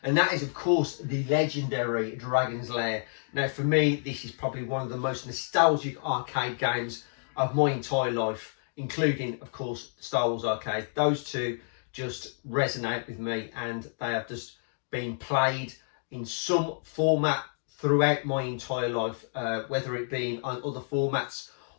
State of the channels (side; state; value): right; silent; digital silence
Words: and that is of course the legendary Dragon's Lair. Now for me, this is probably one of the most nostalgic arcade games of my entire life, including of course Star Wars Arcade. Those two just resonate with me, and they have just been played in some format throughout my entire life, whether it be on other formats